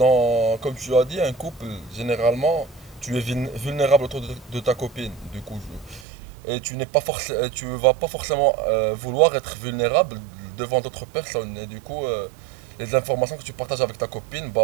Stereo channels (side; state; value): left; drops out; at 6.1 s